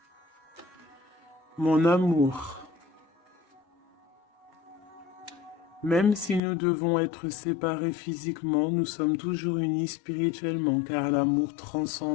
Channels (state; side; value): drops out; right; at 6.4 s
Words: Mon amour. Même si nous devons être séparés physiquement, nous sommes toujours unis spirituellement, car l'amour